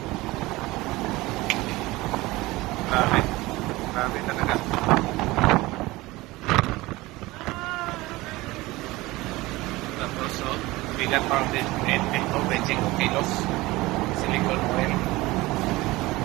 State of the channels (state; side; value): quieter; left; 20.1 dB